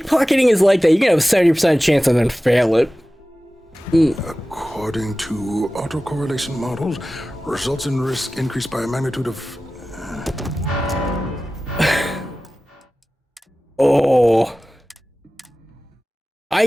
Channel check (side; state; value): both; normal; correlation 0.96